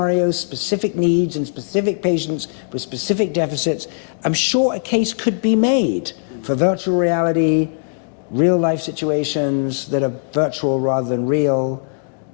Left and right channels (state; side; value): silent; right; 66 dB below the other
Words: specific needs, and specific patients with specific deficits. I'm sure a case could be made for virtual reality, real life situations that are virtual rather than real.